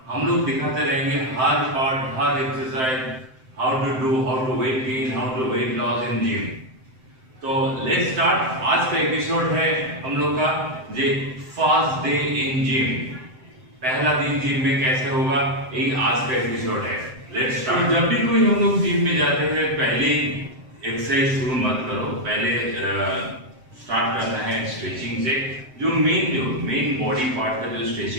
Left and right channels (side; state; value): left; late; 7.7 ms